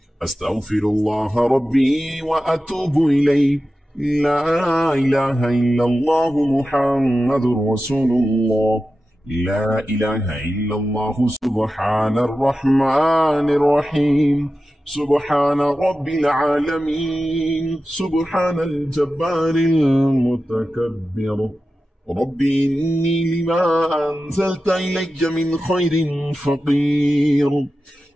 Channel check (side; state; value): both; normal; correlation 0.93